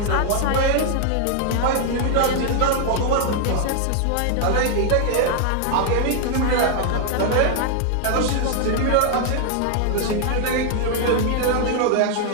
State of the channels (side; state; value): both; different; correlation 0.00